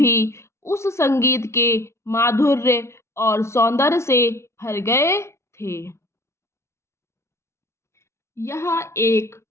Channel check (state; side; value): late; right; 0.13 ms